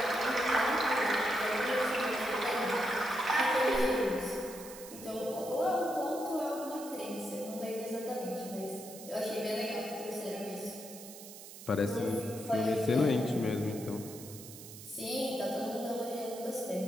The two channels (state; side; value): noise; right; hiss, 14 dB below the sound